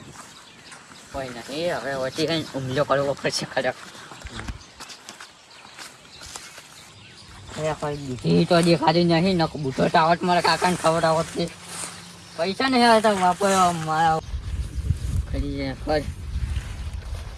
કોઈ નથી હવે વચ્ચે કઈ હુમલો કરવો પડશે ખરેખર. દૂધી તો દેખાતી નહીં ન બુઢો ટાવટ મારા કાકાને ખવડાવત છે. પૈસા નહીં આવતા વાપરવા મારા કરી જાય ખર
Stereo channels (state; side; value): identical; both; correlation 1.00